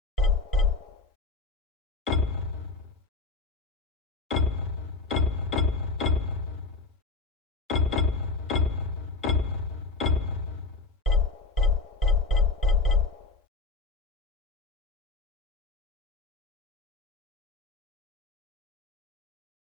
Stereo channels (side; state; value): right; quieter; 3.9 dB